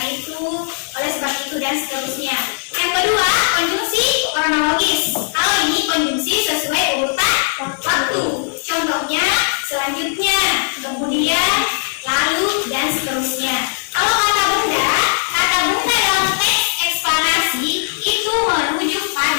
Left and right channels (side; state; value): right; silent; digital silence